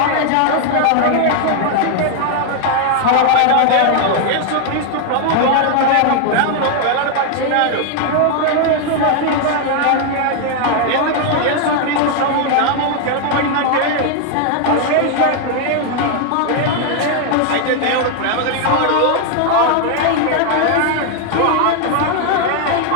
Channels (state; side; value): different; both; correlation 0.00